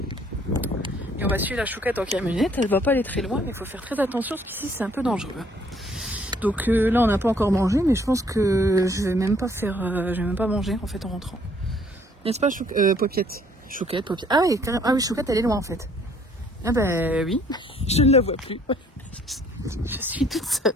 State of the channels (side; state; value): both; normal; correlation 0.61